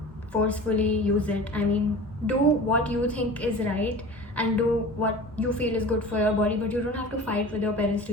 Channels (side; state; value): both; normal; correlation 0.37